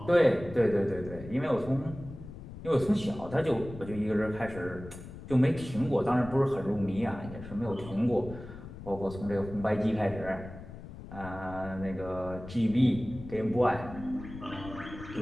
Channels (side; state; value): left; noise; rumble, 13 dB below the sound